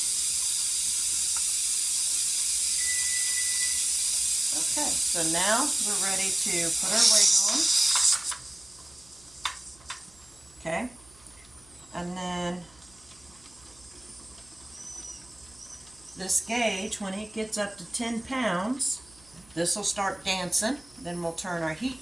Okay, so now we're ready to put our weight on. Okay, and then This gauge, when it gets up to 10 pounds, this will start dancing. Then we'll turn our heat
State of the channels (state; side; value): noise; right; hum, 27 dB below the sound